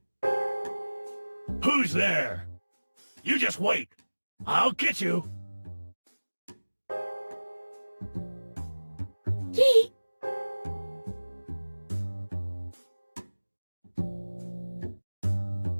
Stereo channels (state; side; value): inverted; both; correlation -1.00